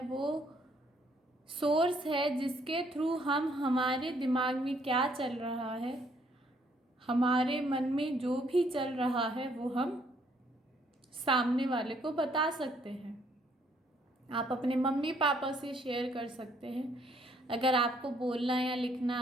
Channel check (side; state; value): both; normal; correlation 0.67